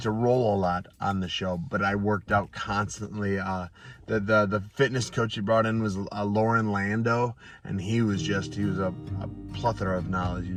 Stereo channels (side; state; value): both; identical; correlation 1.00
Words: to roll a lot on the show, but I worked out constantly. The fitness coach he brought in was Lauren Lando, and he was a plethora of knowledge. He